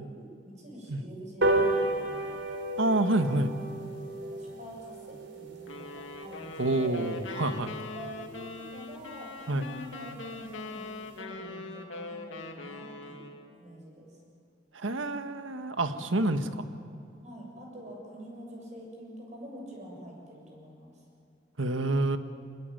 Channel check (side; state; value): both; normal; correlation 0.30